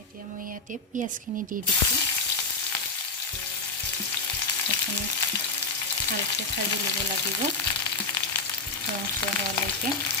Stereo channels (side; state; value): right; quieter; 3.6 dB